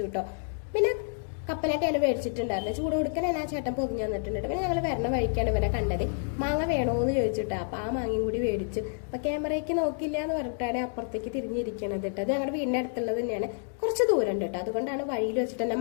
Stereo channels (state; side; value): silent; right; digital silence